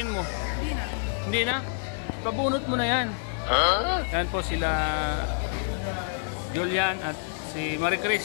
mo. Hindi na. Hindi na? Pabunot mo na yan. Yan po sila Julian at si Marie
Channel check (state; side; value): silent; right; digital silence